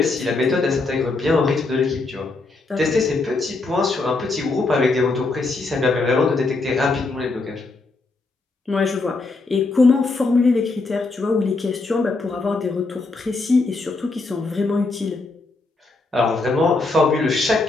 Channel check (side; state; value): right; quieter; 3.5 dB